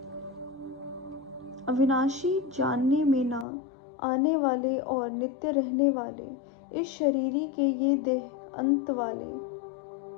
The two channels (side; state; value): right; drops out; at 3.5 s